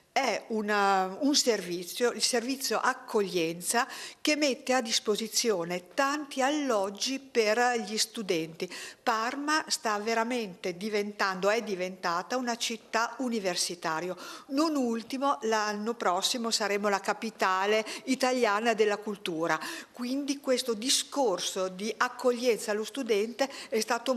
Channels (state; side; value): identical; both; correlation 1.00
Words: È un servizio, il servizio accoglienza, che mette a disposizione tanti alloggi per gli studenti. Parma sta veramente è diventata una città universitaria. Non ultimo, l'anno prossimo saremo la capitale italiana della cultura, quindi questo discorso di accoglienza allo studente è stato